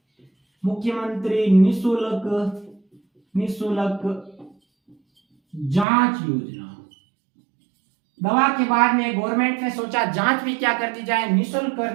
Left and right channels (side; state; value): left; drops out; at 5.9 s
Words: मुख्यमंत्री निःशुल्क जांच योजना। दवा के बाद में गवर्नमेंट ने सोचा जांच भी क्या कर दी जाए, निःशुल्क कर